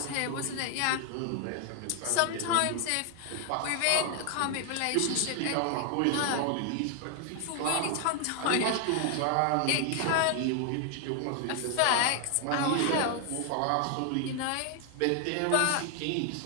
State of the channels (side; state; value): both; different; correlation 0.00